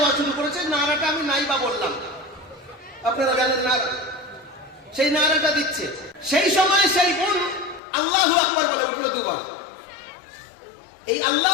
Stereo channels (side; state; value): right; drops out; at 7.8 s